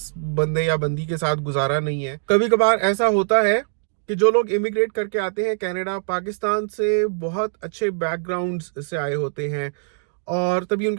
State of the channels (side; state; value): left; silent; digital silence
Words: بندے یا بندی کے ساتھ گزارا نہیں ہے. کبھی کبھار ایسا ہوتا ہے کہ جو لوگ امیگریٹ کر کے آتے ہیں کینیڈا پاکستان سے بہت اچھے بیک گراؤنڈ سے آئے ہوتے ہیں اور تبھی ان